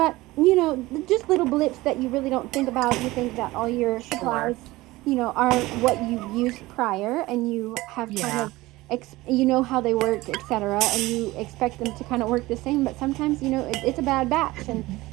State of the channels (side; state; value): left; quieter; 19.3 dB